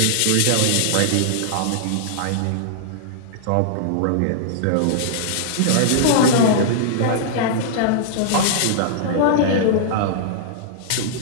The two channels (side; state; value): both; different; correlation -0.01